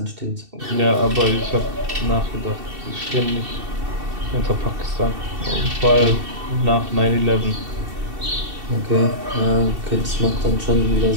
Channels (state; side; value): late; left; 2.7 ms